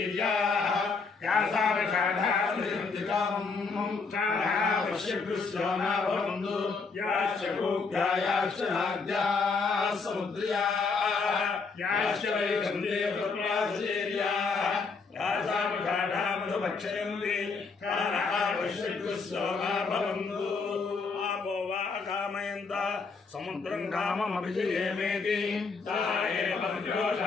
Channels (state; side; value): quieter; right; 4.6 dB